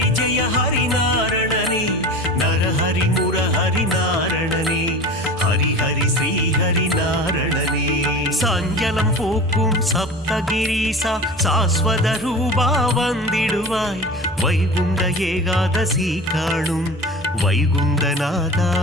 जय हरि नारणने नरहरि मुरहरि नारणने हरि हरि श्रीहरि नारणने சஞ்சலம் போக்கும் சப்தகிரீசா சாஸ்வத ரூபா வந்திடுவாய் வைகுண்ட ஏகாதசி காணும் வைகுந்தநாதா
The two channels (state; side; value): normal; both; correlation 0.35